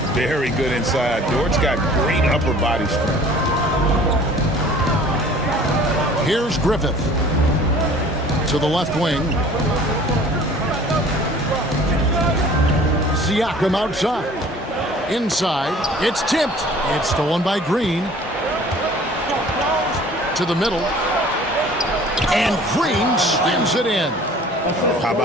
Very good inside. Dort's got great upper body strength. Here's Griffith. To the left wing. Siakam outside. Inside. It's tipped. It's stolen by Green. To the middle. And Green slams it in. How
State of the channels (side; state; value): both; normal; correlation 0.49